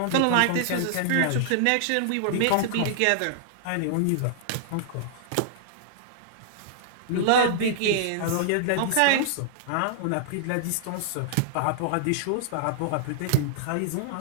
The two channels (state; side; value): different; both; correlation -0.01